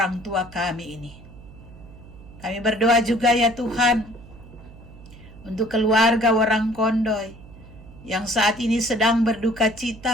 tua kami ini. Kami berdoa juga ya Tuhan untuk keluarga Warang Kondoy yang saat ini sedang berduka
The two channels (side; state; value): right; noise; hum, 19 dB below the sound